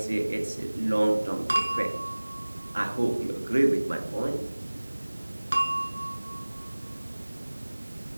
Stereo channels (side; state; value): both; inverted; correlation -1.00